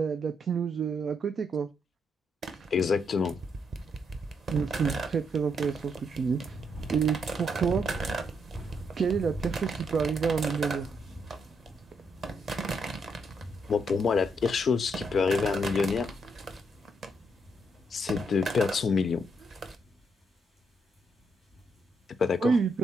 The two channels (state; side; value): normal; both; correlation 0.77